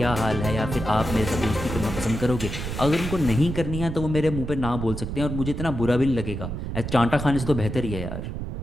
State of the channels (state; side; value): noise; right; rumble, 5 dB below the sound